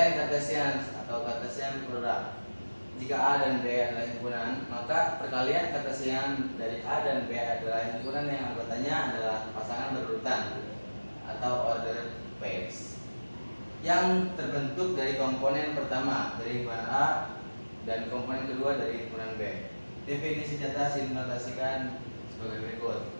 Cartesian atau Cartesian product. Jika A dan B adalah himpunan, maka perkalian Cartesian dari A dan B adalah himpunan yang anggotanya adalah pasangan berurutan atau order pairs yang terbentuk dari komponen pertama dari himpunan A dan komponen kedua dari himpunan B. Definisi di atas dinotasikan sebagai berikut.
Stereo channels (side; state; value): both; inverted; correlation -1.00